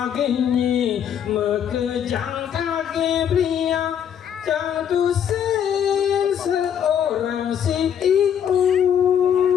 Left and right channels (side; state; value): right; quieter; 8.8 dB